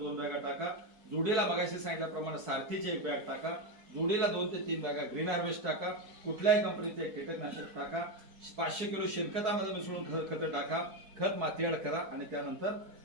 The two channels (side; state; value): left; late; 4.5 ms